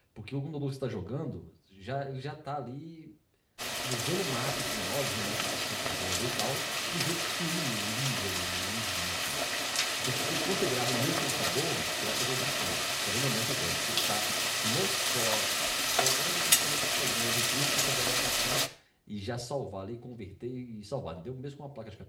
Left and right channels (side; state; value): both; identical; correlation 1.00